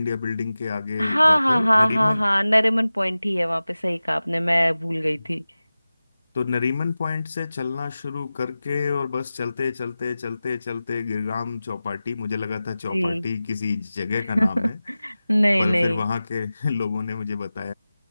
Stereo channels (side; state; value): both; inverted; correlation -0.96